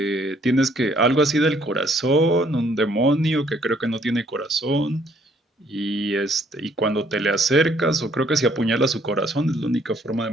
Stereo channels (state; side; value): normal; both; correlation 0.65